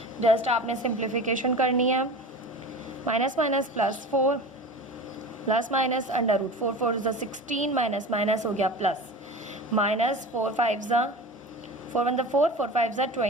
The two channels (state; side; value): normal; both; correlation 0.33